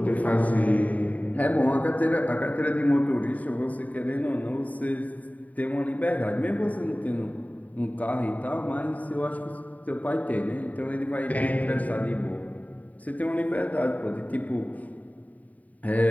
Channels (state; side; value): late; right; 0.072 ms